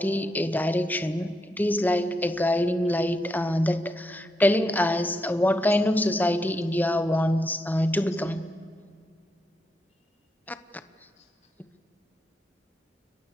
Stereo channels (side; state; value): both; normal; correlation 0.81